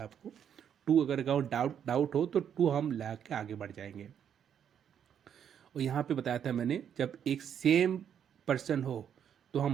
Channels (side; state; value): left; quieter; 8.7 dB